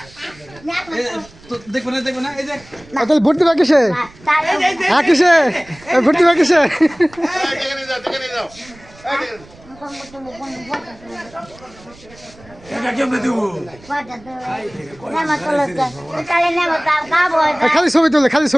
দেখবে না এই যে তাহলে ভর্তি বা কিসে হ্যাঁ কিসে ভর্তি বা কিসে খালি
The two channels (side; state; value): right; noise; rumble, 24 dB below the sound